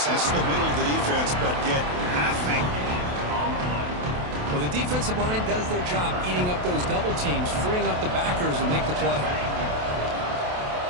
the middle of the defense, but get nothing. Well, the defensive line does their job eating up those double teams, freeing up the backers to make the play.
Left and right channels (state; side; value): late; left; 28 ms